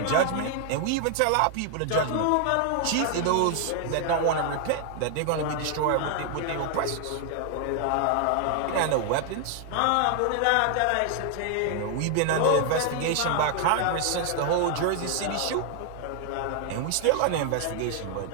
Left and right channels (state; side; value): different; both; correlation 0.00